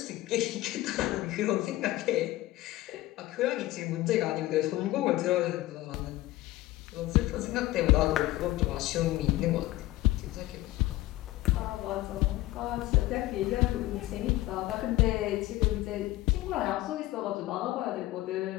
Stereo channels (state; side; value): quieter; right; 17.1 dB